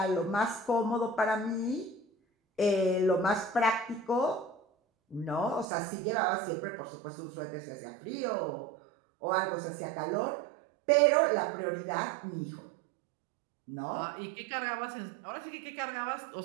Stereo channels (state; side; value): drops out; left; at 5.7 s